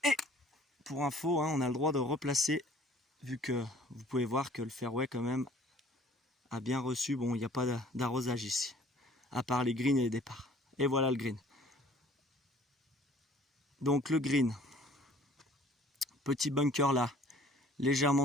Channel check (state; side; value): normal; both; correlation 0.53